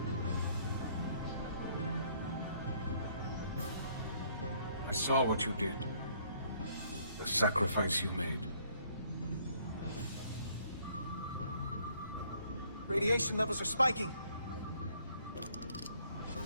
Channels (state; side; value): inverted; both; correlation -0.64